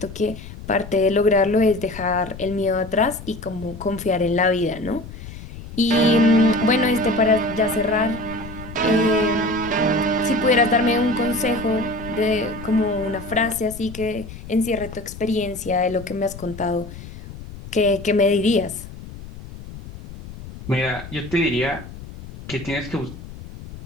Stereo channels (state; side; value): noise; left; rumble, 14 dB below the sound